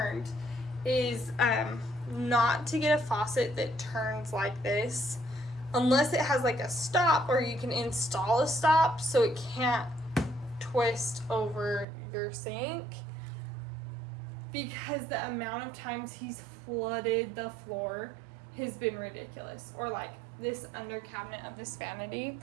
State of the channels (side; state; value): left; drops out; at 11.9 s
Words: is not to get a faucet that turns like this unless it has like a stop, or you can install a stop so it can't twist over your sink, because the amount of times he's flooded the floor has been ridiculous. Or like this under cabinet of this vanity.